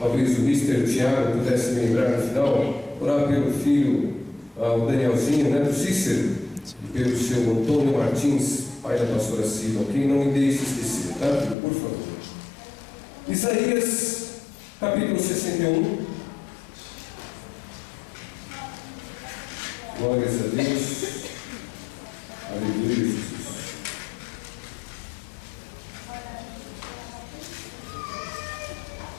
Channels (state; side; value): drops out; right; at 11.6 s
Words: o Mr. Tiago pudesse me lembrar no final, orar pelo filho, o Danielzinho, né, do Cícero, e pelo seu Antônio Martins, pai da pastora Silva, ok? Não me deixe esquecer, tá? Por favor. Isaías, capítulo 61. Glórias a Deus. Aleluia, Jesus.